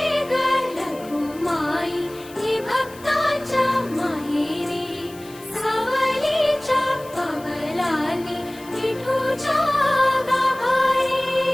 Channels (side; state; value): left; noise; hiss, 21 dB below the sound